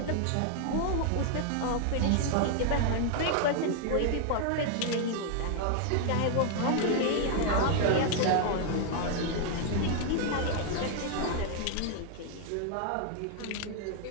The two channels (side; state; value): both; different; correlation 0.00